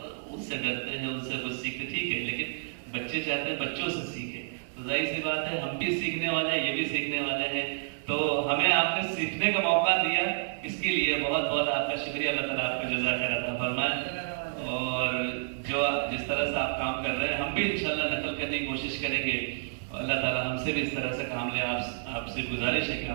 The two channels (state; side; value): silent; left; digital silence